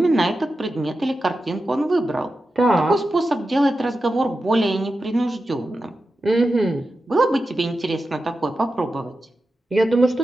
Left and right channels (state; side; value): normal; both; correlation 0.91